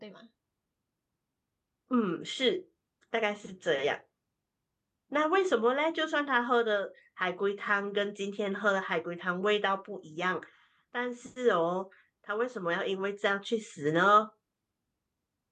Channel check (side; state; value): both; identical; correlation 1.00